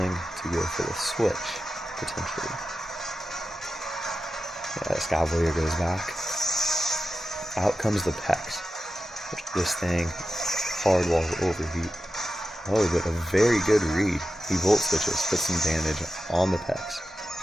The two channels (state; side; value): normal; both; correlation 0.92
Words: to go for the switch, potentially. Yeah, Escavalier goes back. Out comes the Pex. This thing, hard wall overheat. Oh, but a very good read. He volt switches, puts some damage on the Pex,